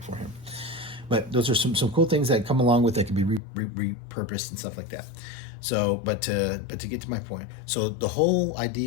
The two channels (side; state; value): right; drops out; at 3.4 s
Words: for him. But those are some cool things that come along with that can be repurposed and stuff like that. So, but to get to my point, so the whole